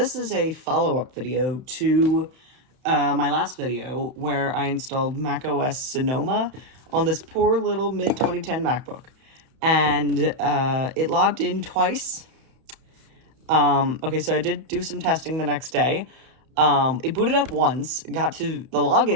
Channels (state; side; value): late; left; 31 ms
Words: is a follow-up video to my last video where I installed macOS Sonoma on this poor little mid-2010 MacBook. And it logged in twice. Okay, so I did do some testing the next day. It booted up once, got to the